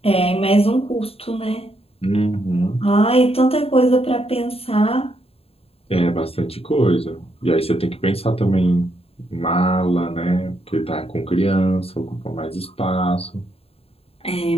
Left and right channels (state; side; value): late; right; 0.28 ms